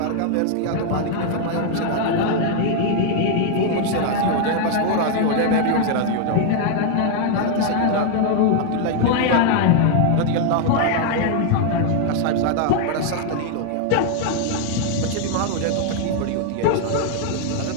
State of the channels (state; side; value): different; both; correlation 0.00